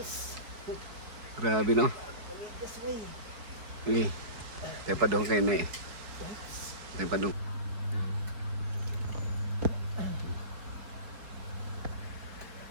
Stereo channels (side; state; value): left; late; 4.7 ms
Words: Grabe no. Tepa dong kayo na eh. Tepa dong.